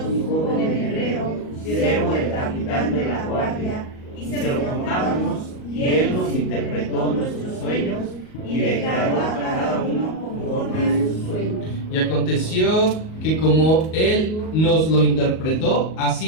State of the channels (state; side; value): late; right; 38 ms